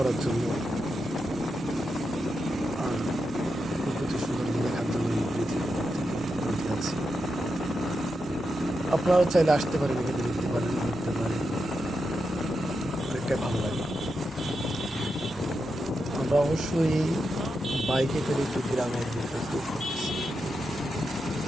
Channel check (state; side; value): normal; both; correlation 0.87